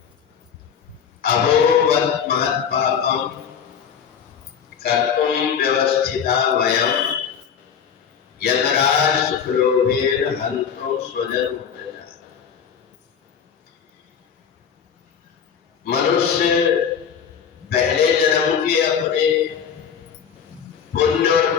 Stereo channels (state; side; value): quieter; right; 7.5 dB